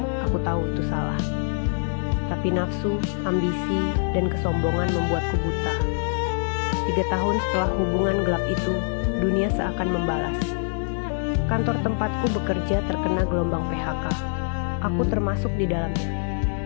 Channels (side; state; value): right; silent; digital silence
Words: Aku tahu itu salah. Tapi nafsu, ambisi, dan kesombongan membuatku buta. 3 tahun setelah hubungan gelap itu, dunia seakan membalas. Kantor tempatku bekerja terkena gelombang PHK. Aku termasuk di dalamnya.